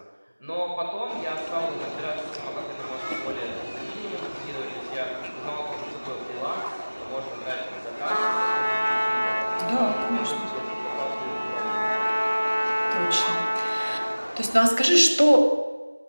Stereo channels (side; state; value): both; inverted; correlation -1.00